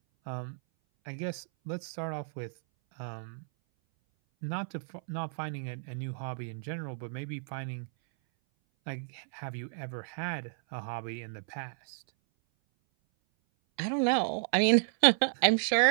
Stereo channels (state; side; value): silent; left; 56 dB below the other